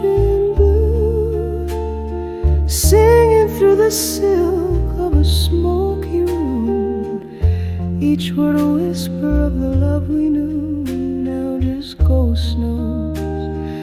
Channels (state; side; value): identical; both; correlation 1.00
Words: in blue, singing through the silk of a smoky room, each word a whisper of the love we knew, now just ghost notes